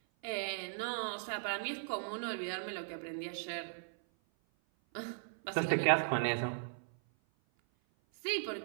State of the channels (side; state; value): left; silent; 53 dB below the other